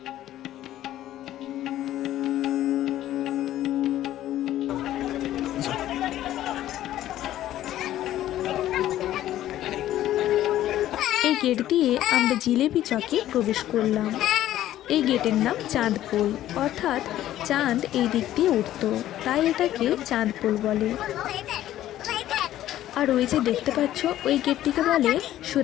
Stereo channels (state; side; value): quieter; right; 13.2 dB